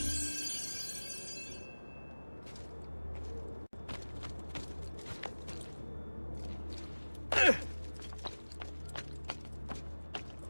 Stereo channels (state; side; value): inverted; both; correlation -1.00